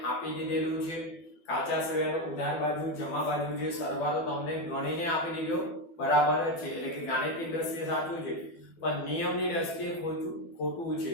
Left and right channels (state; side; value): late; right; 12 ms